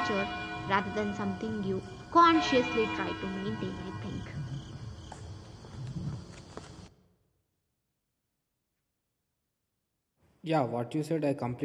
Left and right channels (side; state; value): both; identical; correlation 1.00